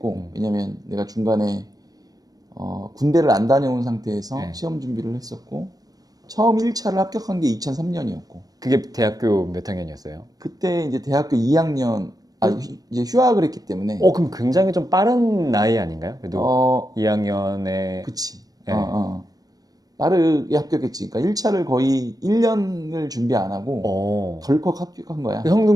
왜냐면 내가 중간에 군대를 안 다녀온 상태에서 시험 준비를 했었고 처음 1차를 합격한 게 2003년이었고 그게 대학교 몇 학년이었어요? 그때 이제 대학교 2학년 이제 휴학을 했기 때문에 그럼 굉장히 좀 빠른 나이 아닌가요? 그래도 2학년에 그치 네. 빠르게 합격했지. 그러니까 1차를 거의 1년을 준비 안 하고 덜컥 합격한 거야.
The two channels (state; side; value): late; left; 0.18 ms